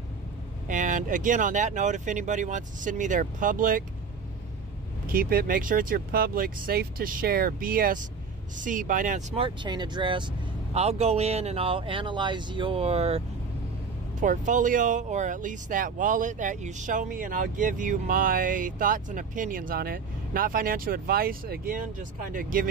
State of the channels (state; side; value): quieter; left; 5.1 dB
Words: And again, on that note, if anybody wants to send me their public, keep it, make sure it's your public, safe to share, BSC, Binance Smart Chain address. I'll go in and I'll analyze your portfolio, or at least that wallet that you show me, and I'll give you my thoughts and opinions on it. Not financial advice, again, just kind of